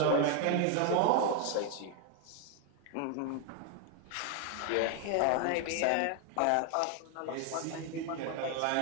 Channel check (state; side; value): different; both; correlation 0.01